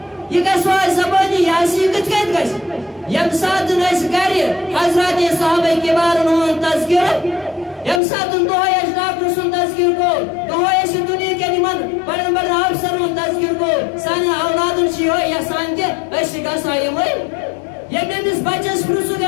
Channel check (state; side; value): drops out; right; at 8.0 s